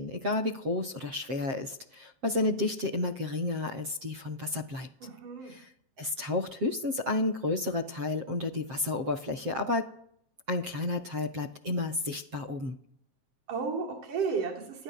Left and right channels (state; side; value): late; left; 7.6 ms